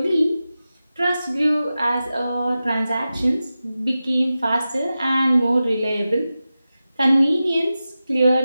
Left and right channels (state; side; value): inverted; both; correlation -0.94